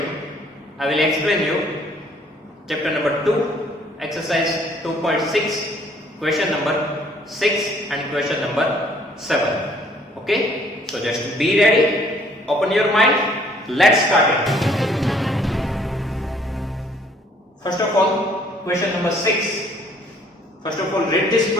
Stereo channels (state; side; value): normal; both; correlation 0.61